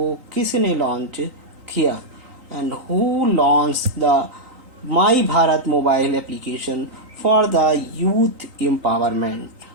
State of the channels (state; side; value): late; left; 3.9 ms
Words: किसने लॉन्च किया? And who launch the my Bharat mobile application for the youth empowerment?